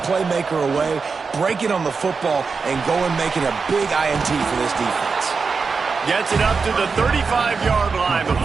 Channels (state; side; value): quieter; left; 4.9 dB